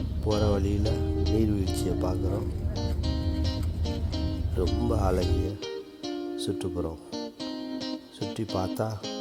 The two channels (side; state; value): both; identical; correlation 1.00